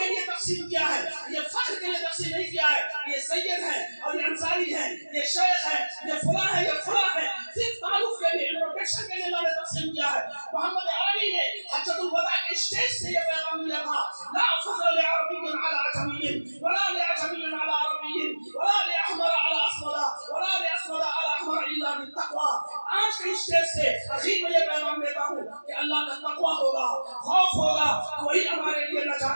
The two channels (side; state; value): both; inverted; correlation -1.00